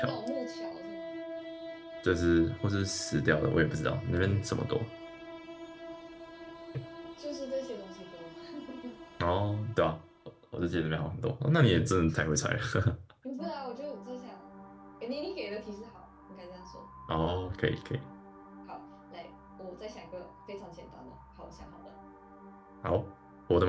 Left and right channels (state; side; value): identical; both; correlation 1.00